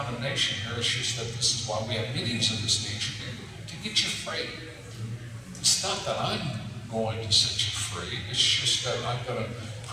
here. It's just that this is why we have meetings of this nature, to get you free. It's not that I'm going to set you free. It's just that I'm going to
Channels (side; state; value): both; identical; correlation 1.00